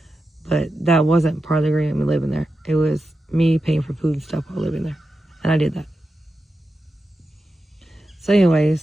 but that wasn't part of the agreement me living there. It was me paying for food and stuff while living there. And I did that. So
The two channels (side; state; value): both; normal; correlation 0.90